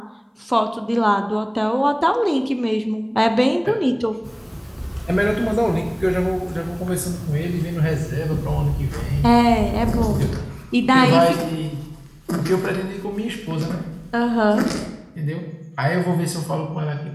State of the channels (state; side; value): identical; both; correlation 1.00